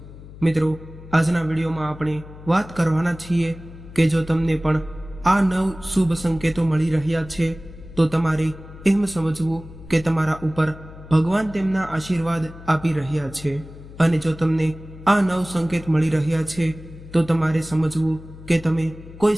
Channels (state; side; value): noise; left; hum, 17 dB below the sound